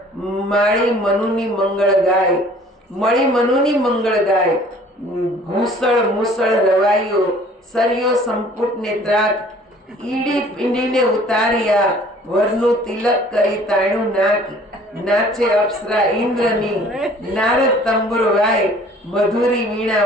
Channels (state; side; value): normal; both; correlation 0.52